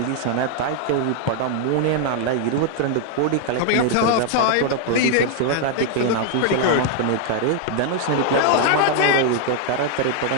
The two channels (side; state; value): both; different; correlation 0.00